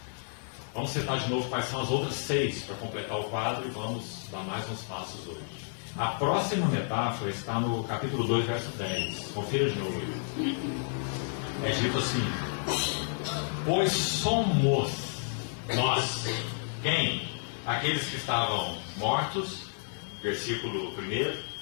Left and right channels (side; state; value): right; silent; digital silence